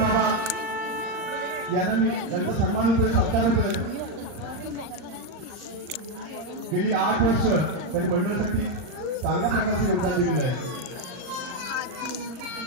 बाबा यांना मी यांचा सन्मान होतोय, सत्कार होतोय. गेली 8 वर्ष त्यांनी मंडळासाठी चांगल्या प्रकारचे योगदान दिलेलं आहे.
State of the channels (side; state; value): left; late; 39 ms